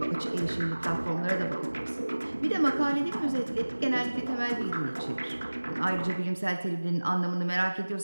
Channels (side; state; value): both; inverted; correlation -1.00